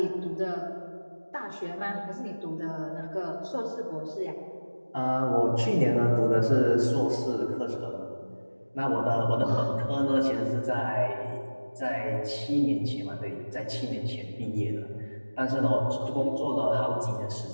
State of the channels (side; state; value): both; inverted; correlation -1.00